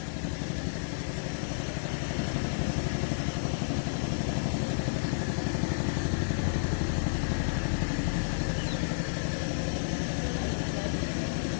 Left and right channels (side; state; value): right; silent; digital silence